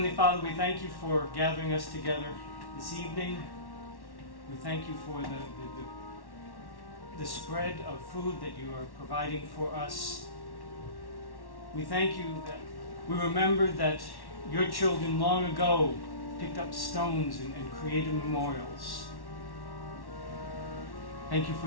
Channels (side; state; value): right; late; 1.1 ms